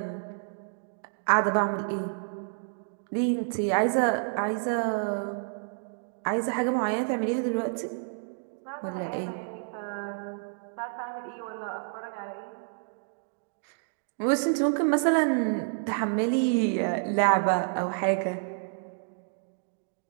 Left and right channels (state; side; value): silent; left; digital silence